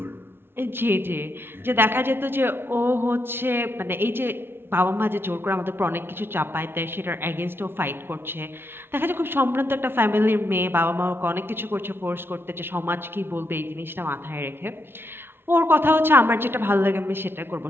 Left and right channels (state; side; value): late; left; 0.11 ms